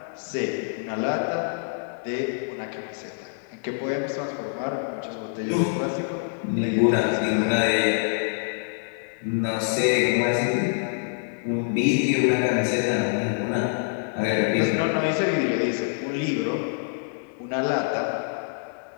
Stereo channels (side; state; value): right; silent; digital silence